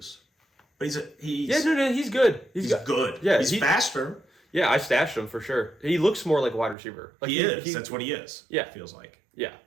But he's he's good. He's good. Yeah, he's faster. Yeah, I stashed him for sure. He looks more like a wide receiver. Like he is. That's what he is. Yeah, it feels like. Yeah,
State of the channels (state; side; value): drops out; left; at 6.8 s